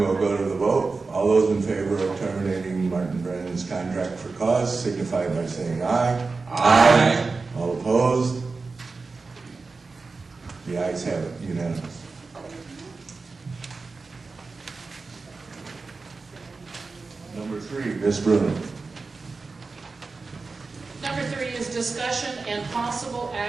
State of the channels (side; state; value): left; quieter; 4.1 dB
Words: go to the vote. All those in favor of terminating Martin Brannon's contract for cause signify by saying aye. Aye. All opposed? The ayes have it, unanimous. Number 3, Ms. Bruno. Number 3 is discussion and possible